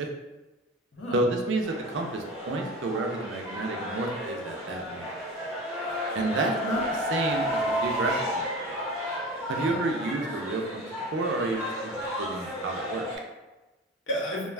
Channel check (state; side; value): normal; both; correlation 0.33